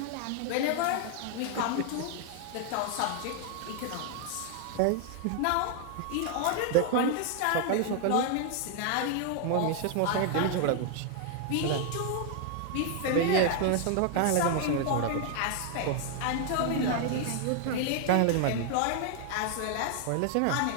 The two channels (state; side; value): different; both; correlation 0.00